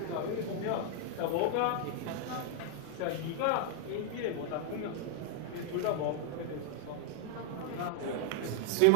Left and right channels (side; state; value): both; different; correlation 0.00